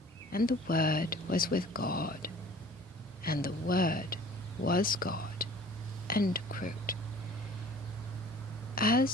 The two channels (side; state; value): both; normal; correlation 0.47